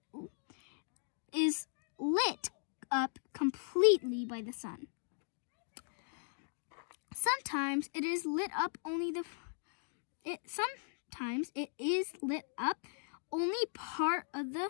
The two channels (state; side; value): silent; right; digital silence